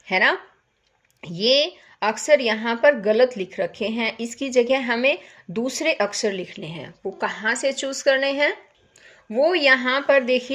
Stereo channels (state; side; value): identical; both; correlation 1.00